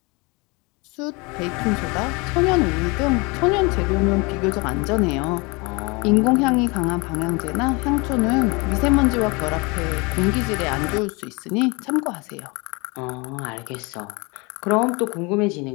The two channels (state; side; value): quieter; right; 27.6 dB